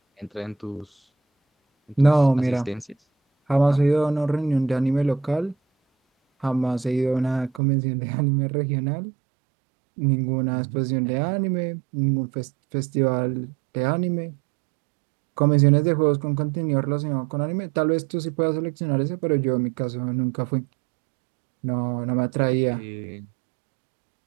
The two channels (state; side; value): drops out; left; at 7.6 s